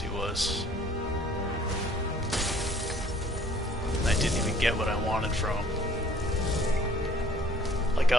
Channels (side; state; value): both; normal; correlation 0.56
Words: was. And I didn't even get what I wanted from him. Like,